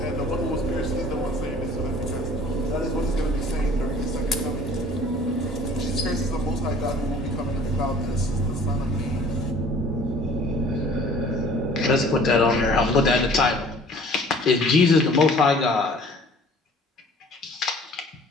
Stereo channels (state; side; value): normal; both; correlation 0.51